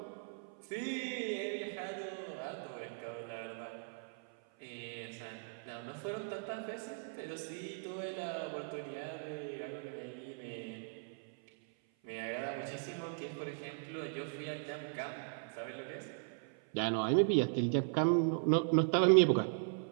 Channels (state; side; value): silent; left; 52 dB below the other